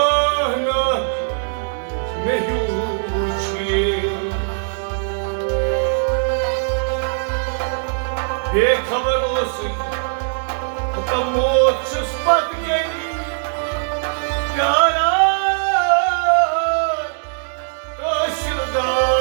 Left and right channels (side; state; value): left; silent; digital silence